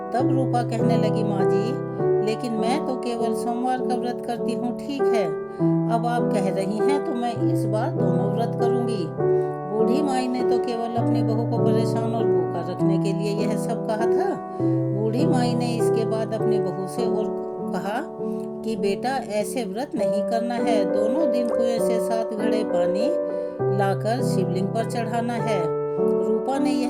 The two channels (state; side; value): identical; both; correlation 1.00